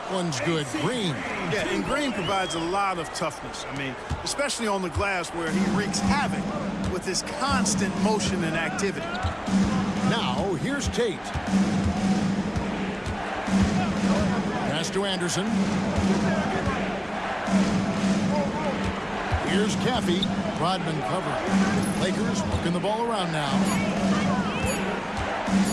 one's good. Green. Yeah, and Green provides a lot of toughness. I mean, especially on the glass where he wreaks havoc with his constant motion and activity. Now, here's Tate. Pass to Anderson. Here's Caffey. Rodman covering. Lakers working the ball around now.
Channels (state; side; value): identical; both; correlation 1.00